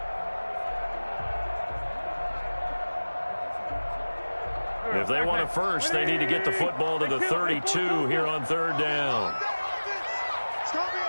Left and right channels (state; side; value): inverted; both; correlation -1.00